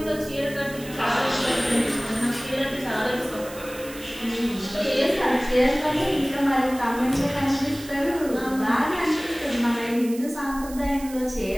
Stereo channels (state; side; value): noise; right; hiss, 16 dB below the sound